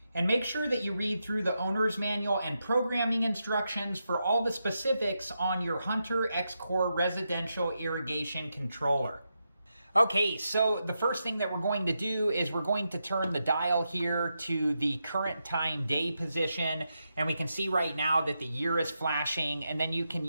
And make sure that you read through the owner's manual and programming instructions for all the specifics on your Hunter X-Core residential irrigation controller. Okay, so the first thing that we're going to do is we're going to turn the dial here to the current time day position, and we can see right now that the year is flashing, and then you can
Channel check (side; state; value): both; inverted; correlation -0.86